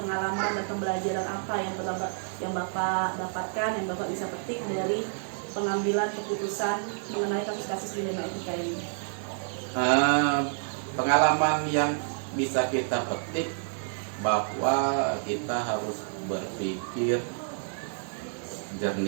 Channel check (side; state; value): left; silent; 59 dB below the other